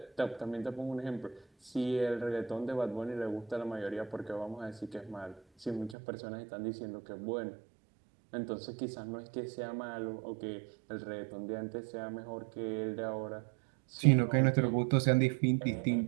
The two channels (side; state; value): left; drops out; at 6.0 s